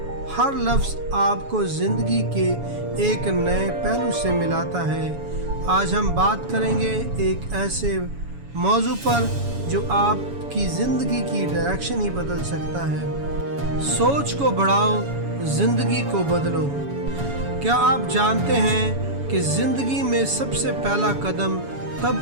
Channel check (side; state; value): left; late; 7.1 ms